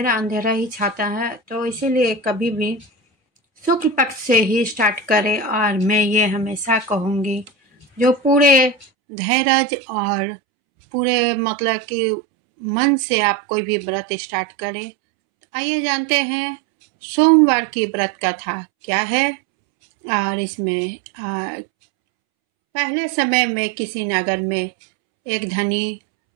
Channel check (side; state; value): left; drops out; at 8.8 s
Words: अंधेरा ही छाता है, तो इसीलिए कभी भी शुक्ल पक्ष से ही स्टार्ट करें। और मैं ये हमेशा कहूँगी, जो पूरे धैर्य और पूरे मतलब कि मन से आप कोई भी व्रत स्टार्ट करें। तो आइए जानते हैं सोमवार की व्रत कथा क्या है। और इसमें पहले समय में किसी नगर में एक धनी